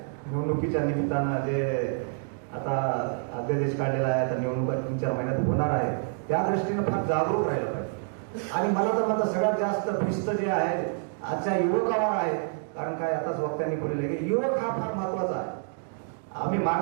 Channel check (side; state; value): left; silent; 60 dB below the other